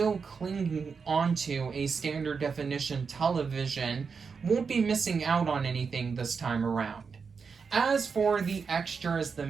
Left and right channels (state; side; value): quieter; left; 5.5 dB